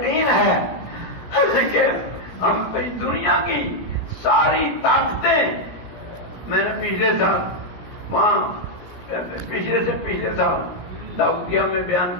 ہے کہ ہم دنیا کی ساری طاقتیں، میں نے پچھلے سال وہاں پچھلے سے پچھلے سال داؤدیہ میں بیان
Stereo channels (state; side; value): late; right; 17 ms